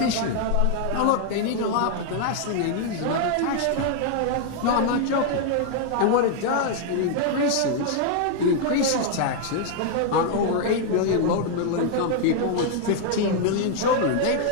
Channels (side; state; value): both; different; correlation 0.00